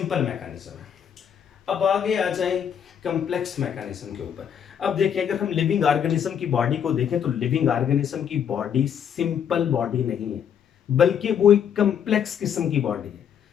मैकेनिज्म है। अब आगे आ जाए कम्प्लेक्स मैकेनिज्म के ऊपर। अब देखिए अगर हम लिविंग ऑर्गेनिज्म की बॉडी को देखें तो लिविंग ऑर्गेनिज्म की बॉडी सिंपल बॉडी नहीं है बल्कि वो एक कम्प्लेक्स किस्म की बॉडी है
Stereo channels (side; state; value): right; quieter; 8.4 dB